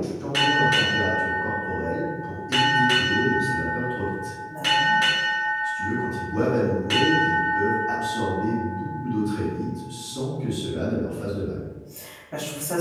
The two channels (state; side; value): identical; both; correlation 1.00